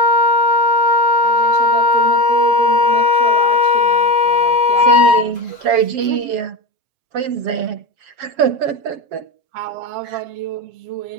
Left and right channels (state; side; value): late; left; 7.4 ms